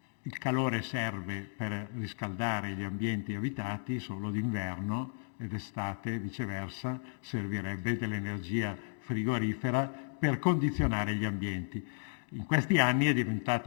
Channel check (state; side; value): silent; right; digital silence